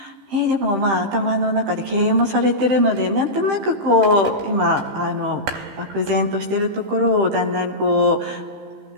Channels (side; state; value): left; late; 15 ms